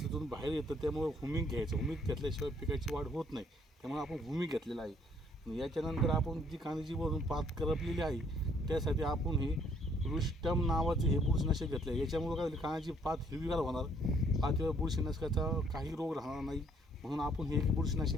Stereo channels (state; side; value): normal; both; correlation 0.65